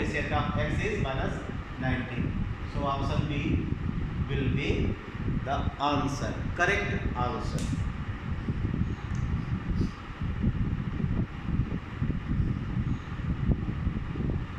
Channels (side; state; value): both; identical; correlation 1.00